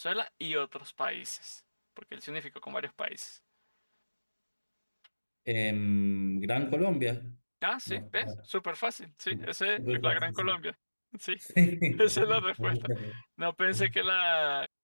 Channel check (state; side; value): inverted; both; correlation -1.00